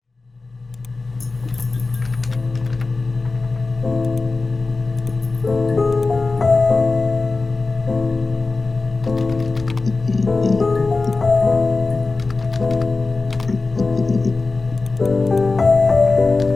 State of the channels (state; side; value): quieter; right; 3.7 dB